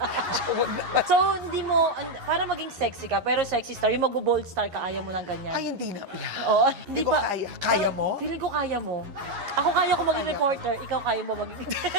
Huwag naman. So, hindi mo, para maging sexy ka, pero sexy star, yung mag-bold star ka, ayaw mo ng ganyan. Ay, hindi na. Oo, Hindi ko kaya. Kaya mo? Feeling ko kaya mo. Ako kaya ko maging reporter, ikaw kaya mo maging...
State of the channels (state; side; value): late; left; 11 ms